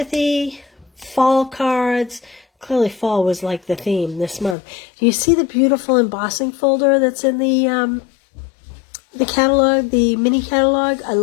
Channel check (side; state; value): right; drops out; at 4.5 s